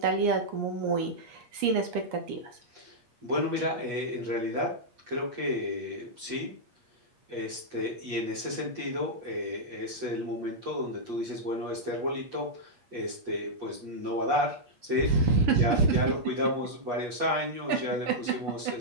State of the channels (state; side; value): late; left; 8.4 ms